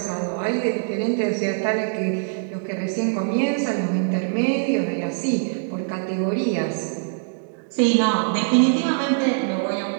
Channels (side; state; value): left; silent; digital silence